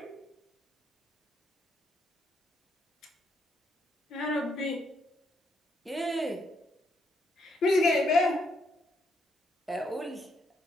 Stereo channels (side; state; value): both; normal; correlation 0.75